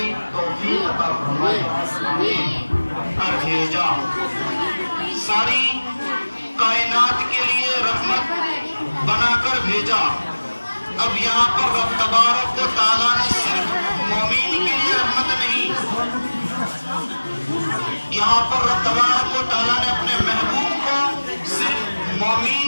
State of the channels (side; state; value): both; inverted; correlation -1.00